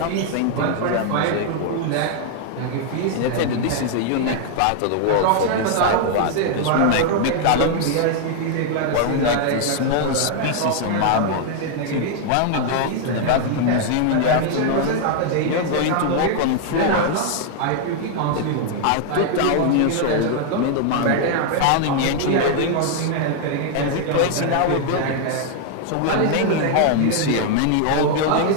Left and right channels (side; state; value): both; different; correlation 0.00